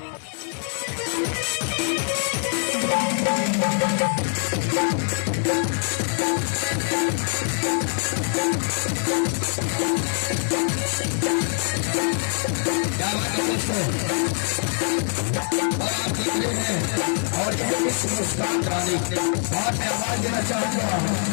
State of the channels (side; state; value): right; silent; 63 dB below the other